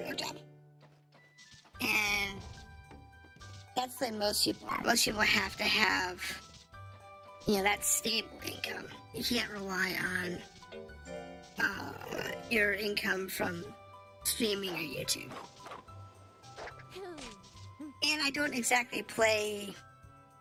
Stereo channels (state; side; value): identical; both; correlation 1.00